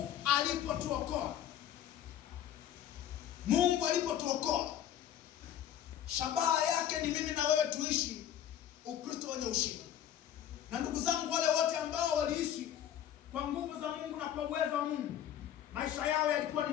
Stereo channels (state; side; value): quieter; right; 10.6 dB